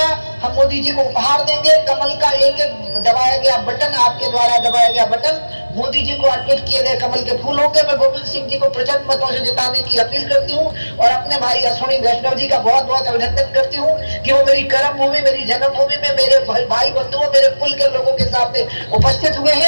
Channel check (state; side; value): inverted; both; correlation -1.00